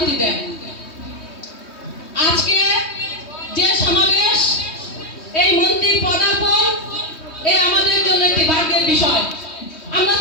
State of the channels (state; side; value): late; right; 3.2 ms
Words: দেন। আজকে যে সমাবেশ, এই মন্ত্রীর পদার্পণ, এ আমাদের জন্য একটি ভাগ্যের বিষয়। আমরা